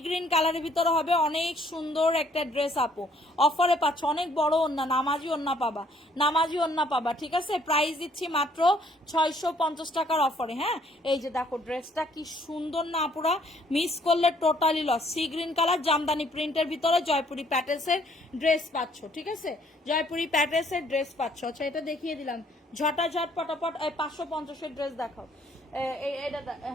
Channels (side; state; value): both; normal; correlation 0.64